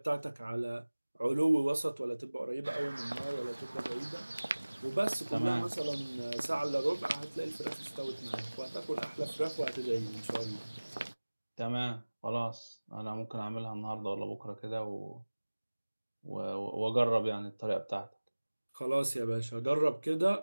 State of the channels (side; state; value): both; inverted; correlation -1.00